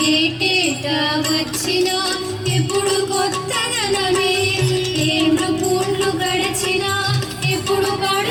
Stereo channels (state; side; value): identical; both; correlation 1.00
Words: ఏటేటా వచ్చినా ఎప్పుడు కొత్తదనమే ఏళ్ళు పూండ్లు గడిచినా ఎప్పుడు